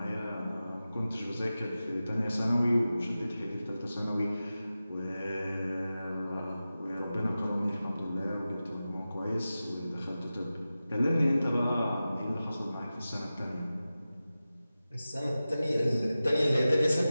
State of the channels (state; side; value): inverted; both; correlation -0.95